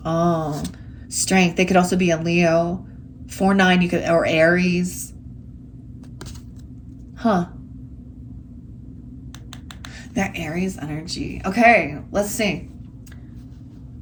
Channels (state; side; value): identical; both; correlation 1.00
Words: Oh, strength. They could also be a Leo. 4-9, or Aries. Huh. That Aries energy. Okay, let's see.